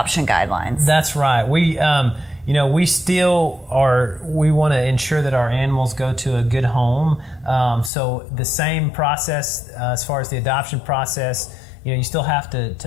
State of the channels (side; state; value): right; drops out; at 7.9 s